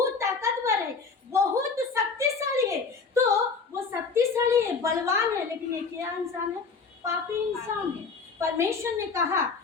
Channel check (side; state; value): right; quieter; 4.8 dB